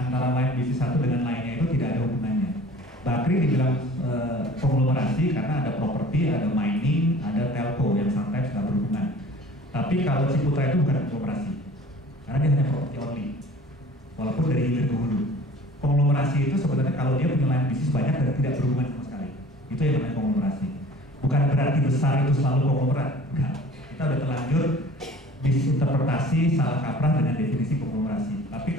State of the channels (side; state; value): both; normal; correlation 0.46